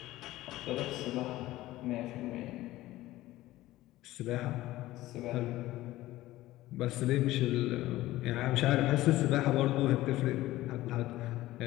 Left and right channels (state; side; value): quieter; right; 16.5 dB